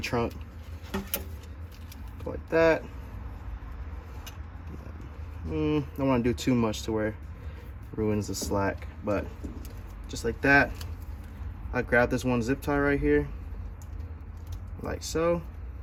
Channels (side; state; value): both; identical; correlation 1.00